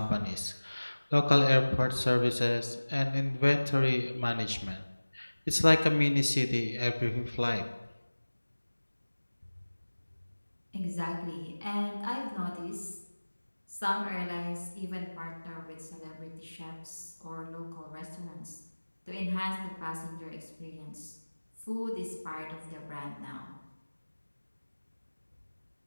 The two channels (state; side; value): inverted; both; correlation -1.00